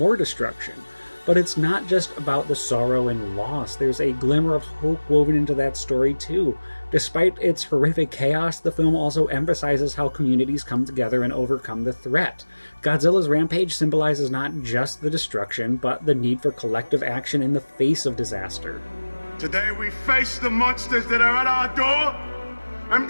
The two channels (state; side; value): inverted; both; correlation -1.00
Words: destruction. But it's not just about the sorrow and loss, there's a glimmer of hope woven into that story too. Despite its horrific chaos, the film also emphasizes how communities come together and overcome the threat. Godzilla's rampage symbolizes not just the destruction, but the need for collective action in the face of disaster. Today we face the monsters that are at our door and